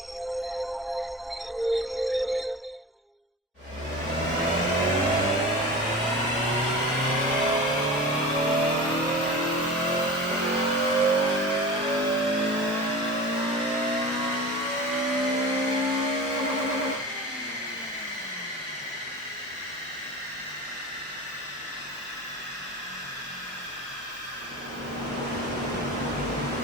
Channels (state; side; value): normal; both; correlation 0.33